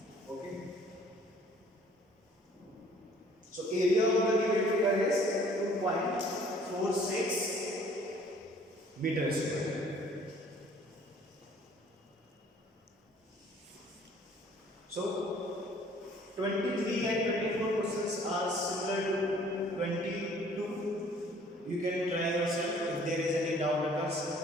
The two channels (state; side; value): normal; both; correlation 0.56